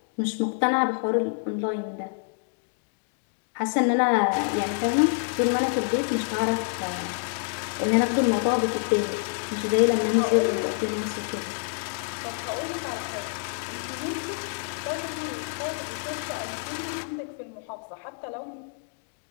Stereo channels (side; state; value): right; silent; 60 dB below the other